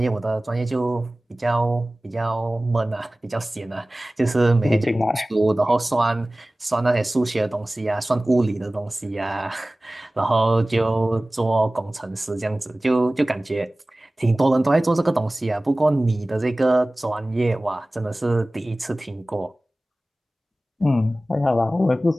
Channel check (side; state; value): both; normal; correlation 0.98